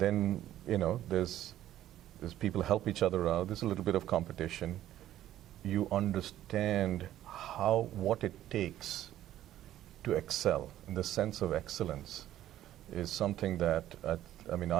there's people help each other out. There's a little bit of competition. You understand what it takes to excel. And the sense of excellence is something that,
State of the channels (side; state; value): left; quieter; 12.8 dB